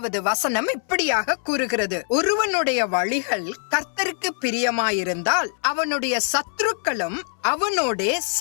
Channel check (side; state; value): right; silent; digital silence